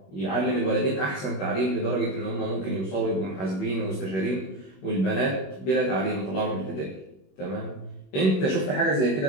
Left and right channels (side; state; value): right; late; 21 ms